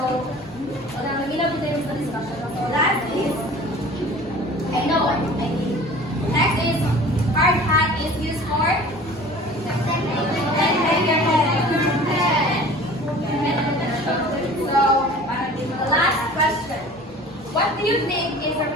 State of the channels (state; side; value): normal; both; correlation 0.44